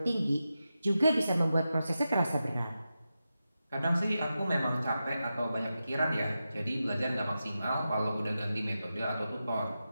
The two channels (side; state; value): both; inverted; correlation -0.90